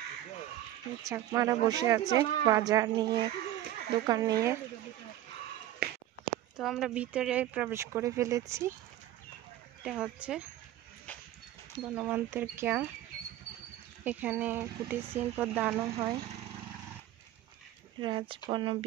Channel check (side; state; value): left; quieter; 13.6 dB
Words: চাকমারা বসে আছে বাজার নিয়ে, দোকান নিয়ে। তো আমরা ভিতরে প্রবেশ করে ফেলেছি। এটা হচ্ছে বনমান্তের ক্যাম্প। এখানে কুটির শিল্প দানও হয়। রাজবন